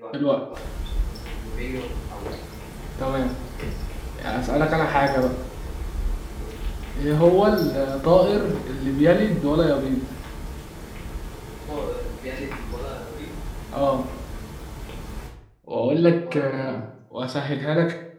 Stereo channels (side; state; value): both; identical; correlation 1.00